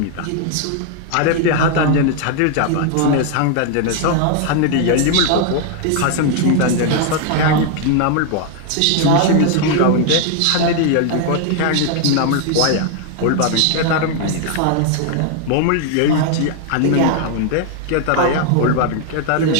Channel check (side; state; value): both; different; correlation 0.00